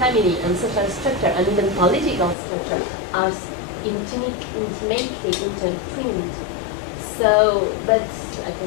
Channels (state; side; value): drops out; right; at 2.4 s